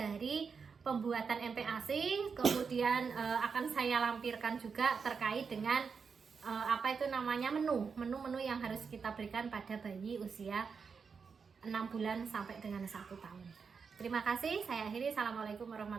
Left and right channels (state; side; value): quieter; left; 5.6 dB